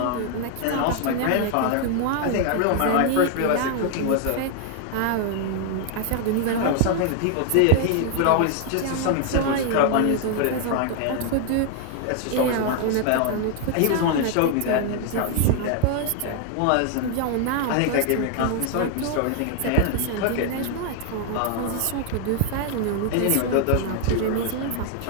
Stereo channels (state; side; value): different; both; correlation 0.00